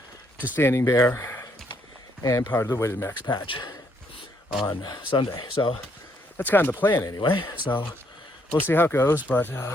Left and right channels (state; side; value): normal; both; correlation 0.71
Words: to Standing Bear and part of the Weighted Max Patch on Sunday. So that's kind of the plan anyway. So we'll see how it goes. But